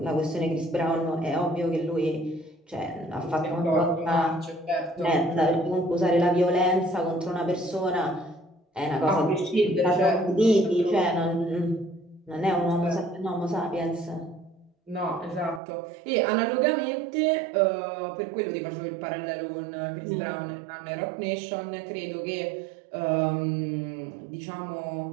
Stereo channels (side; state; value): left; drops out; at 15.6 s